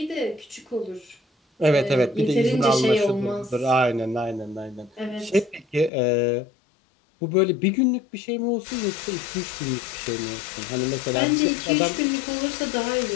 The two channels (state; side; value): drops out; right; at 5.9 s